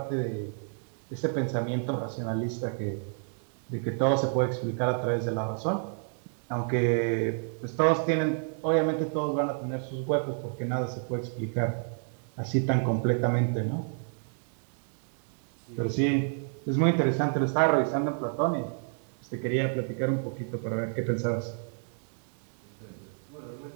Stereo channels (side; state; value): left; silent; 58 dB below the other